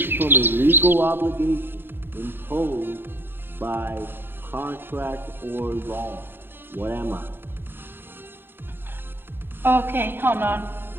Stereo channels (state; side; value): late; left; 0.10 ms